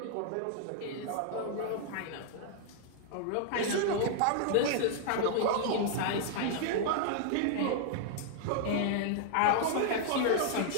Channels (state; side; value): different; both; correlation -0.01